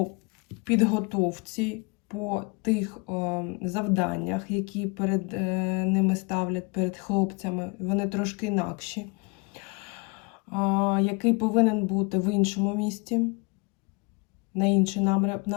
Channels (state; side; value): quieter; right; 29.8 dB